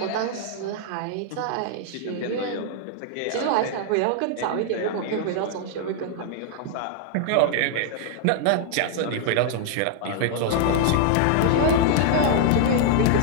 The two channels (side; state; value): both; different; correlation 0.00